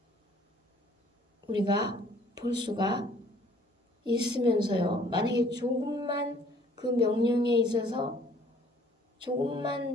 우리가 볼 수가 있으면서요. 만약에 조금만 그 명령에 있어서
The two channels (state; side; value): normal; both; correlation 0.57